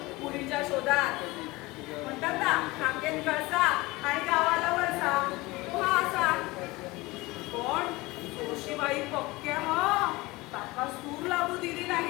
मुलीच्या शोधात. म्हणतात ना काकेन कळसा आणि गावाला वळसा तो हा असा. पण जोशीबाई पक्क्या हा ताका सूर लागू दिली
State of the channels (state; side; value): quieter; right; 21.7 dB